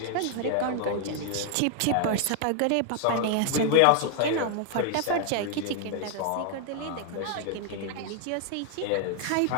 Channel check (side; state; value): both; different; correlation 0.00